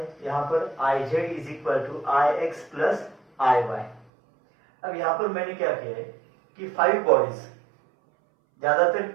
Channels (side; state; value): left; drops out; at 4.0 s